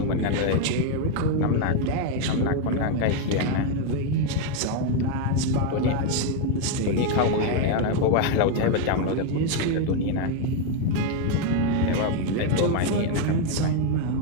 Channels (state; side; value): different; both; correlation 0.01